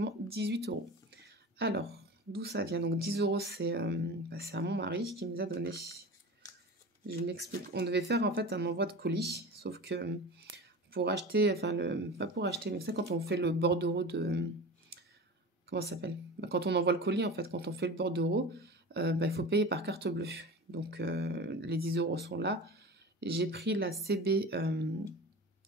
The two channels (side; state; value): both; normal; correlation 0.33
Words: 18 €. Alors, d'où ça vient? Donc, 10 €, c'est à mon mari qui me les a donnés. Je m'explique. On devait faire en fait un envoi de colis, sauf que pour acheter, enfin, pas pour acheter, mais c'est quand on fait le bordereau de... Comment ça s'appelle? Bah, quand on envoie le colis, en fait, quand on fait le bordereau, il faut payer par carte bleue. Donc, les 10 € sont là. J'ai pris la CB,